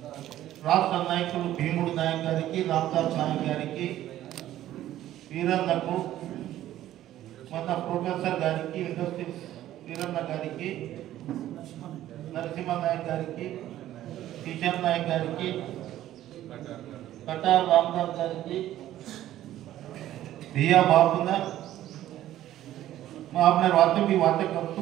రాష్ట్ర నాయకులు భీముడు నాయక్ గారికి, రామదాస్ నాయక్ గారికి, వీరన్నకు, మన ప్రొఫెసర్ గారికి, ఇండస్ట్రీస్ వీరన్న గారికి, నరసింహ నాయక్ గారికి, కిషన్ నాయక్ గారికి, कटार रामदास गारी, भैया बाबूना, मैं आपने बातें भी बातें करतू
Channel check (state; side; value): quieter; left; 13.2 dB